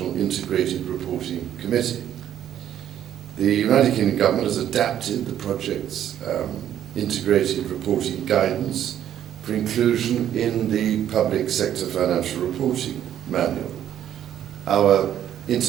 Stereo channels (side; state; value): left; quieter; 10.8 dB